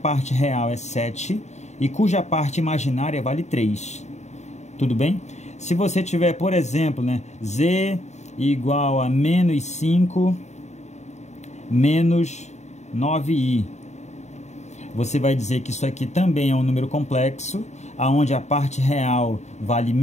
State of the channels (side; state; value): right; late; 0.33 ms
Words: real é 7 e cuja parte imaginária vale 3. Tudo bem? Se você tiver, por exemplo, né, z igual a menos 5 menos 9i, você vai dizer que isso aqui também é um número complexo, onde a parte real vale